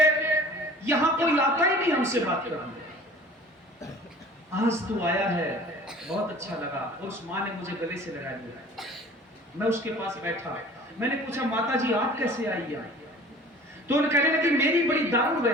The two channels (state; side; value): normal; both; correlation 0.46